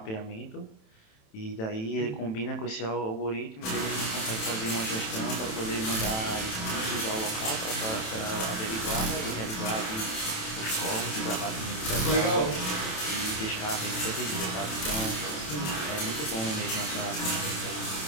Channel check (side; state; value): right; late; 27 ms